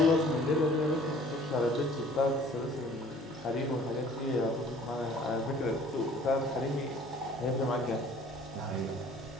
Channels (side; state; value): both; normal; correlation 0.52